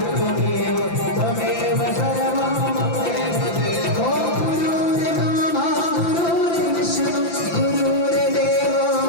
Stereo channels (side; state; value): right; late; 5.9 ms